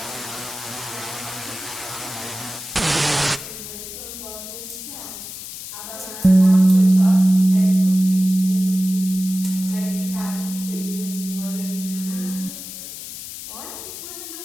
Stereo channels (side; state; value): left; noise; hiss, 10 dB below the sound